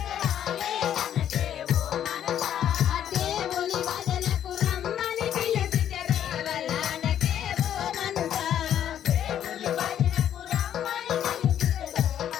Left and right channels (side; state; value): right; quieter; 10.2 dB